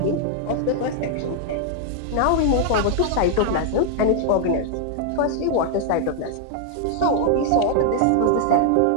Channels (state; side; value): different; both; correlation 0.00